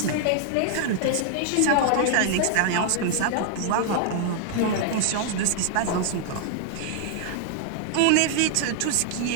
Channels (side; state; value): both; different; correlation 0.00